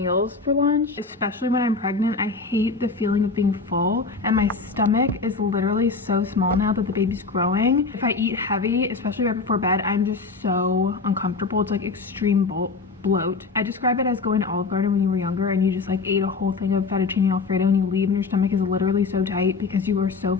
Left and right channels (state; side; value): quieter; right; 4.2 dB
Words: for lunch, especially when I'm pregnant. I hate the feeling of being full, and my stomach is literally so small now that the baby's growing. If I eat heavy, especially right before bed, I'm just so uncomfortable. It's like extreme bloat. I describe it as going to Olive Garden when you were younger and you just like ate a whole thing of fettuccine alfredo and you leave and your stomach is literally so tight because you are so